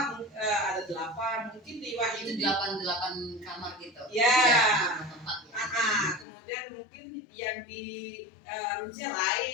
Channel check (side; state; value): right; drops out; at 6.2 s